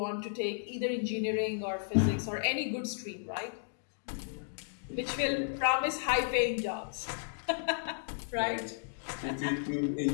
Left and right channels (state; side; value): silent; right; digital silence